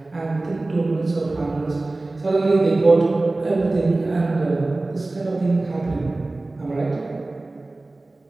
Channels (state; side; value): quieter; left; 3.0 dB